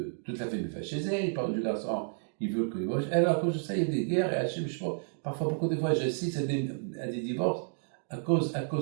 toute la famille fasse chez elle, les parents du garçon, ils veulent que... Alors, à cause de ça, il y a des guerres, et Hachem, je pense, parfois, beaucoup de fois, j'assiste à des divorces, à cause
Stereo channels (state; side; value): silent; left; 57 dB below the other